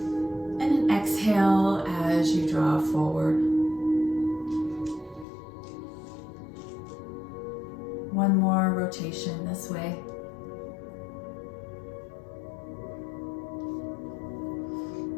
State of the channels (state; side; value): drops out; right; at 5.2 s